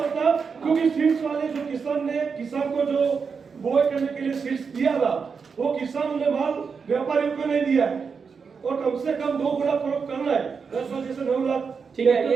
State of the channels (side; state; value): left; quieter; 5.6 dB